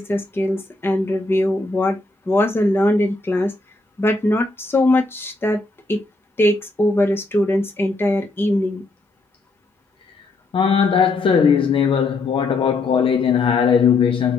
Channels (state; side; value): quieter; right; 3.3 dB